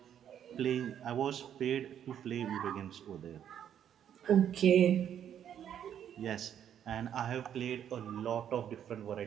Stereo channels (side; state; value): left; quieter; 9.5 dB